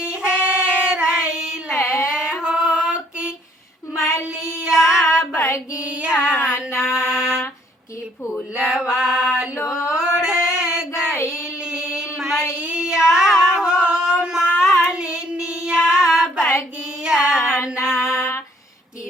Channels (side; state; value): both; normal; correlation 0.64